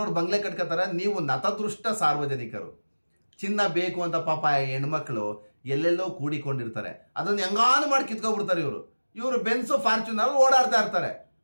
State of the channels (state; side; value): inverted; both; correlation -1.00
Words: ಬಂಗ್ಲೆ ಕಟ್ಕೋತಾರೆ. ನೀವು ನತದೃಷ್ಟ ಸಾರ್ವಜನಿಕರು, ಚಿನ್ನ ಬೇಕು ಅಂತ ಪಾಪ ಹೆಣ್ಮಕ್ಳು ಎಲ್ಲೆಲ್ಲೋ ಕೂಡಿಕೊಂಡಿರ್ತಾರೆ, ಅದನ್ನು ಹೆಂಗಾನು ಮಾಡಿ ಕಿತ್ಕೊಬಿಡ್ತಾರೆ ಇವರು ಬೆನ್ಸು ಫಾರ್ಚುನರ್ ಓಡಾಡ್ತಾ ಇರ್ತಾರೆ.